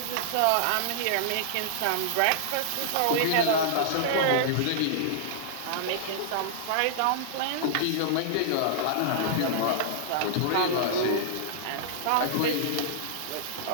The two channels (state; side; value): different; both; correlation -0.01